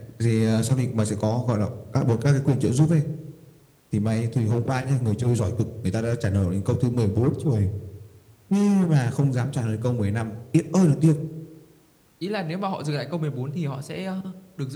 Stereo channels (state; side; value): identical; both; correlation 1.00